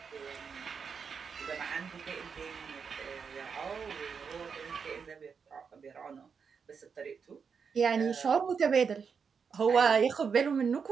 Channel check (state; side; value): quieter; left; 6.1 dB